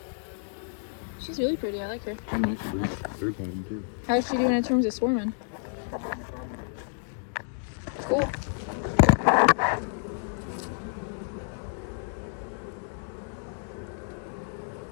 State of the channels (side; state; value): right; silent; digital silence